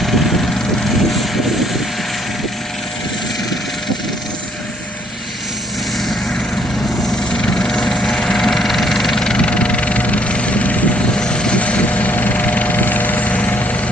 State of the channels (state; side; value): normal; both; correlation 0.65